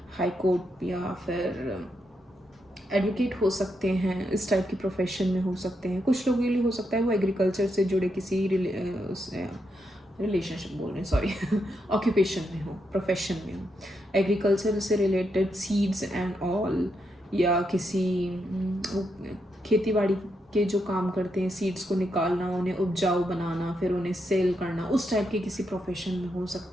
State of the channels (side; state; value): both; normal; correlation 0.82